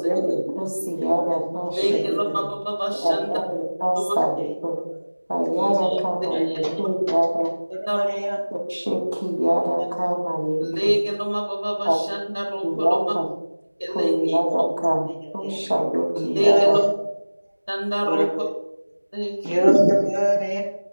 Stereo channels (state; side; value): inverted; both; correlation -1.00